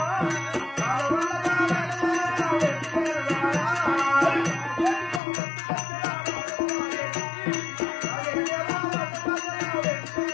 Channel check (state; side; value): drops out; right; at 5.2 s